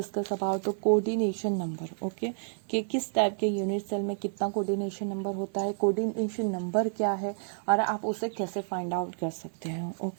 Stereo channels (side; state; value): left; silent; 58 dB below the other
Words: about the coordination number. Okay, कि किस type के unit cell में कितना coordination number होता है, coordination number क्या है और आप उसे कैसे फाइंड आउट कर सकते हैं.